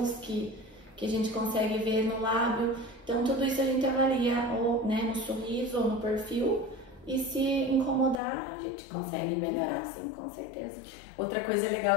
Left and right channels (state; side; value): drops out; right; at 8.2 s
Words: que a gente consegue ver no lábio. Então tudo isso a gente avalia ou, né, no sorriso ou no perfil. E se incomodar, a gente consegue melhorar, sim, com certeza. Outra coisa